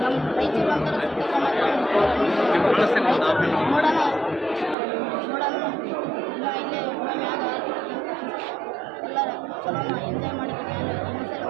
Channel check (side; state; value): left; drops out; at 4.8 s